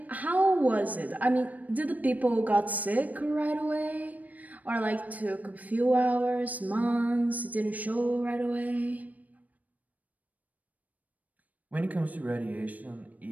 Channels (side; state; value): left; late; 0.075 ms